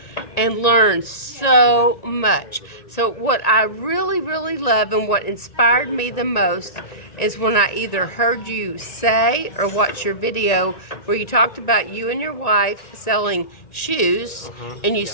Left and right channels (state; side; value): late; right; 1.8 ms